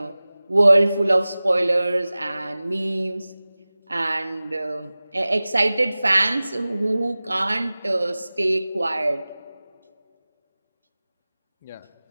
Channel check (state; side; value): inverted; both; correlation -0.98